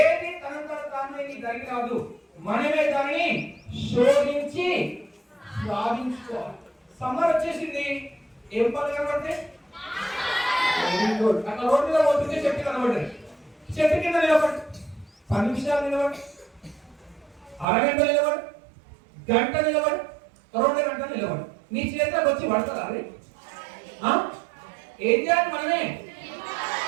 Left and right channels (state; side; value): drops out; left; at 17.7 s